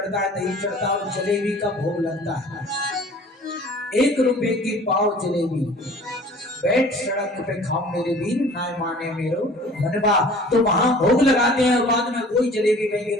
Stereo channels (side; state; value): both; normal; correlation 0.48